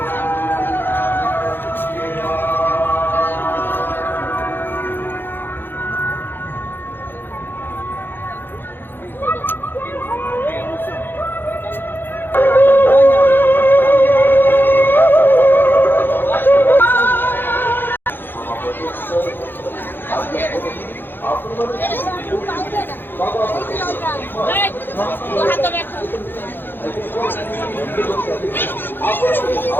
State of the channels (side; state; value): right; late; 0.099 ms